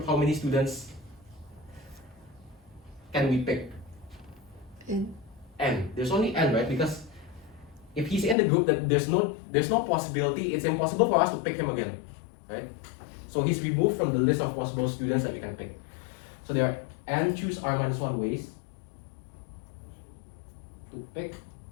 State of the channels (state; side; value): drops out; right; at 8.3 s